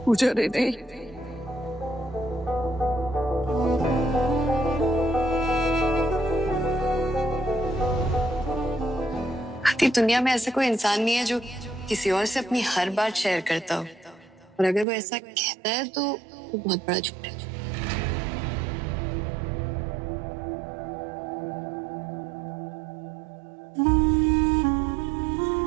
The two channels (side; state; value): left; drops out; at 14.9 s